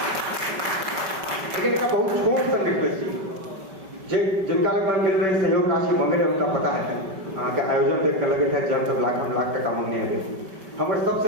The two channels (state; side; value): late; left; 5.2 ms